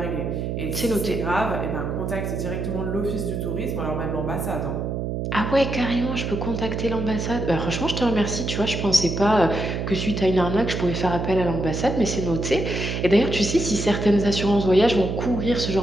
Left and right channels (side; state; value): right; noise; hum, 2 dB below the sound